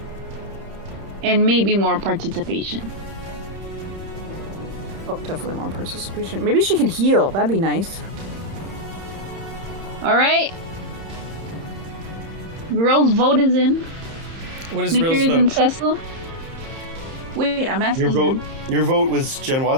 And maybe more participation. Oh, definitely more participation. Maybe she can heal. That'd be nice. Alright. Girl's vote is in. What is Snickers Rill's and vote? Cecil. Wait, I'm asking Your vote was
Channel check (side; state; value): left; late; 30 ms